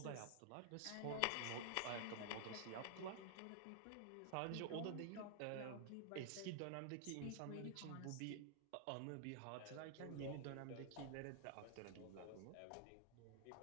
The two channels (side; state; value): both; different; correlation -0.01